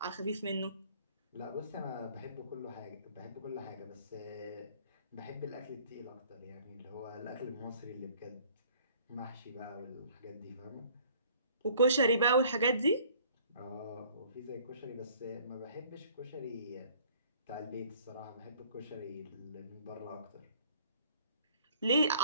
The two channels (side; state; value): both; inverted; correlation -0.56